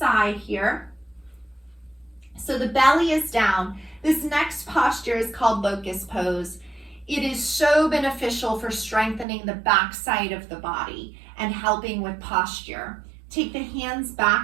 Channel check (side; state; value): left; drops out; at 9.2 s